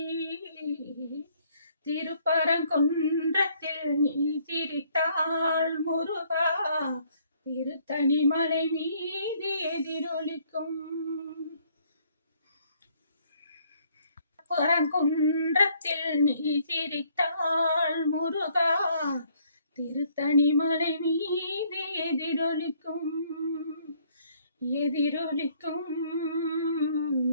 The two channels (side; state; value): both; inverted; correlation -0.65